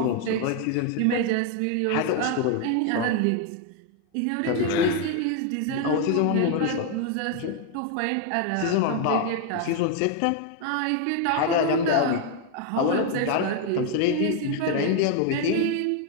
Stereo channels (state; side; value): different; both; correlation 0.01